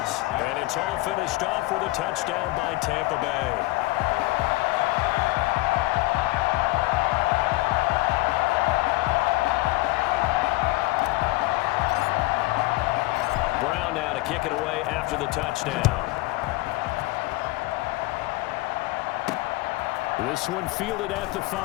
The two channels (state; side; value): quieter; right; 20.5 dB